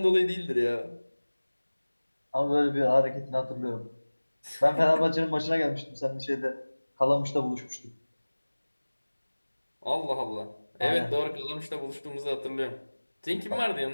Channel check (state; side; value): inverted; both; correlation -1.00